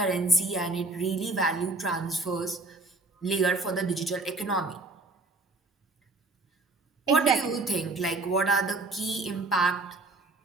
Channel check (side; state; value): left; quieter; 3.2 dB